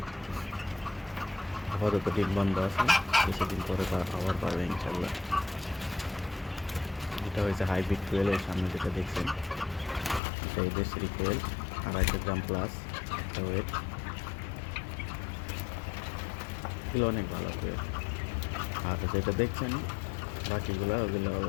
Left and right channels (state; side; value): drops out; right; at 10.2 s